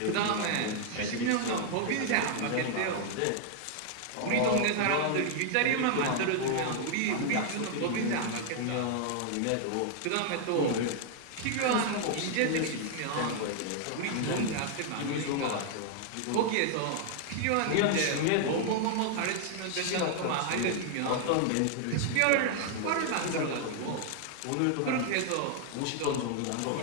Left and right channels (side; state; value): both; different; correlation 0.00